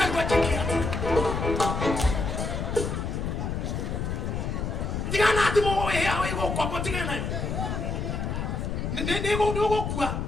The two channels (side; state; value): left; noise; rumble, 2 dB below the sound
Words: chekia tigana thimo we hawe kwa tigana ne go kwa